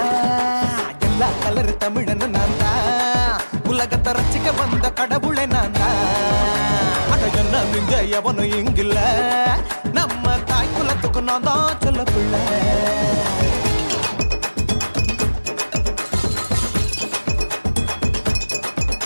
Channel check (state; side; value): inverted; both; correlation -1.00